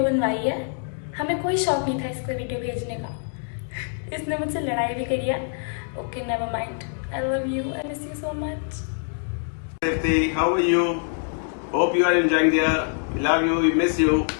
बनवाई है. हमें कोई शौक नहीं था इसको वीडियो भेजने का. इसने मुझसे लड़ाई भी करी है. Okay, never mind. I love you. I miss you so much. Safety, how are you? Hope you are enjoying there. Love you, we miss you.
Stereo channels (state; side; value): silent; right; digital silence